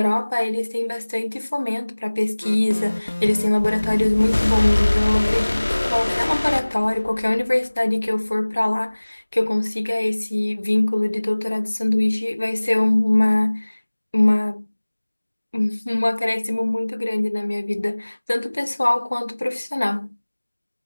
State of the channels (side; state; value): both; inverted; correlation -1.00